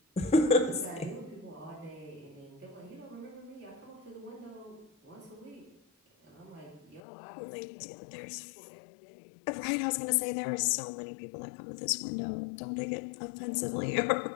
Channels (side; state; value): right; drops out; at 7.0 s